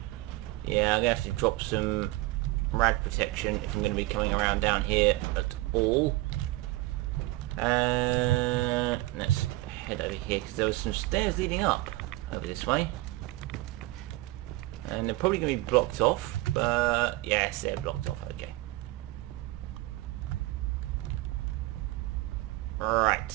yeah, I'm gonna have to drop some rad protection if I'm gonna be coming around down here at all. Let's head over here because there was some stairs leading up over this way, and they're probably gonna be blocked off. But yes, they're blocked off. Okay. Right,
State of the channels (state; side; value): quieter; left; 19.4 dB